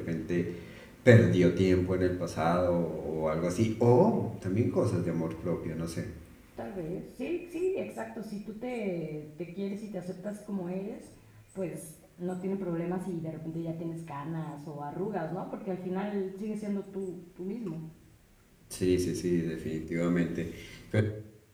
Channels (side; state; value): both; identical; correlation 1.00